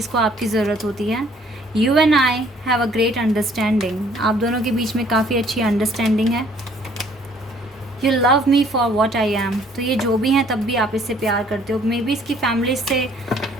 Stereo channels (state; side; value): normal; both; correlation 0.60